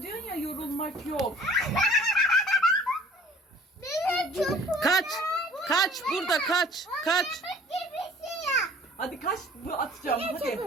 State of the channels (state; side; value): normal; both; correlation 0.51